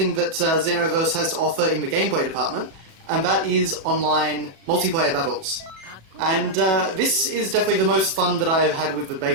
that Xenoverse has to offer in the gameplay department, and that is online multiplayer battles. And this is definitely the most fun that I've had with the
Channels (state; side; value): late; left; 37 ms